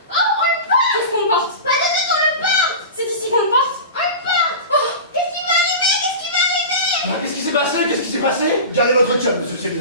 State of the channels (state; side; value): inverted; both; correlation -0.30